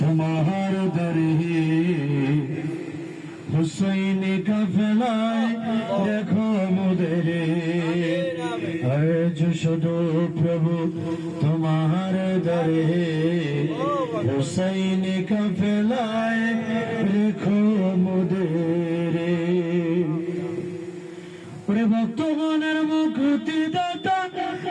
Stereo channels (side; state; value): both; identical; correlation 1.00